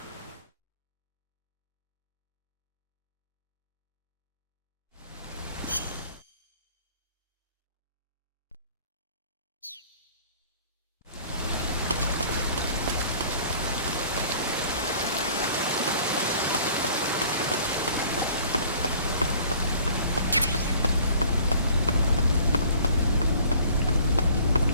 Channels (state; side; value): inverted; both; correlation -0.51